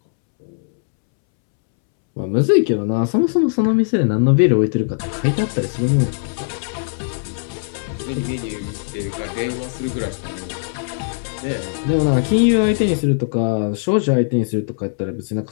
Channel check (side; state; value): right; silent; 66 dB below the other